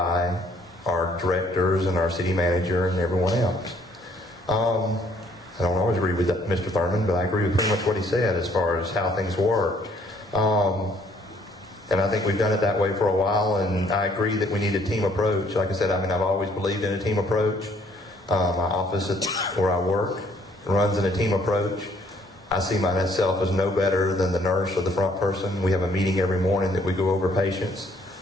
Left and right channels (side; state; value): both; normal; correlation 0.64